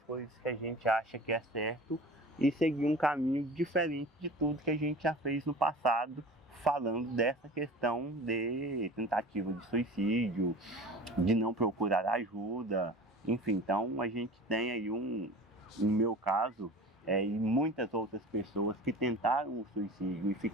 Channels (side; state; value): both; normal; correlation 0.38